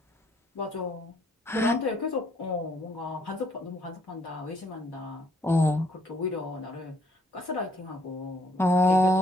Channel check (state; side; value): normal; both; correlation 0.67